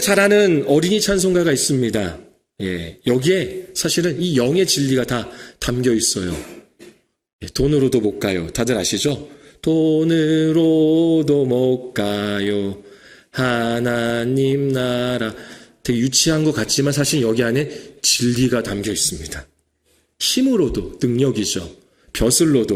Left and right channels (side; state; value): both; identical; correlation 1.00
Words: 잘 아는 어린이 찬송가가 있습니다. 여기에 사실은 이 영의 진리가 다 담겨 있어요. 돈으로도 못 가요. 다들 아시죠? 돈으로도 못 가요. 하나님 나라. 되게 유치한 것 같지만 사실 여기 안에 진리가 담겨 있습니다. 힘으로도 능력이죠.